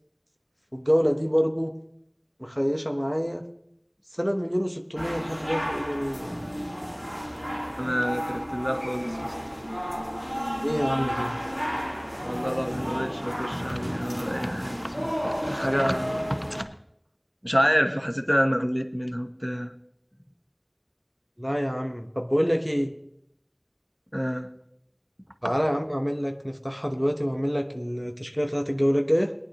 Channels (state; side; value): identical; both; correlation 1.00